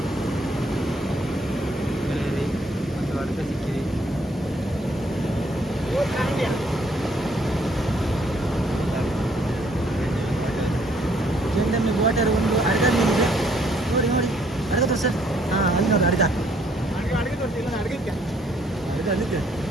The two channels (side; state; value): both; normal; correlation 0.66